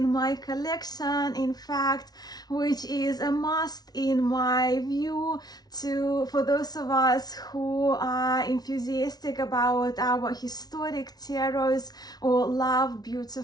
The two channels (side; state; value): right; late; 0.19 ms